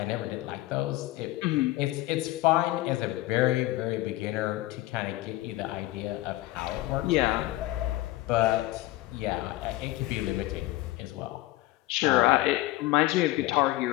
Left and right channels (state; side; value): quieter; right; 17.7 dB